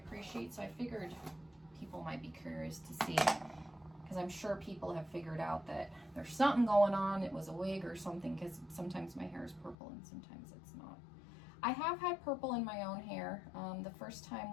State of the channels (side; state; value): right; drops out; at 9.8 s